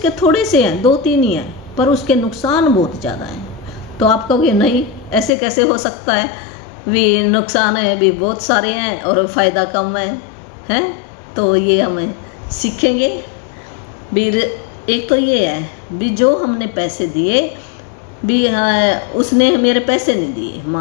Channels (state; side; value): drops out; right; at 5.3 s